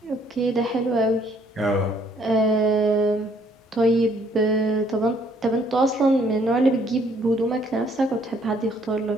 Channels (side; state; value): both; normal; correlation 0.64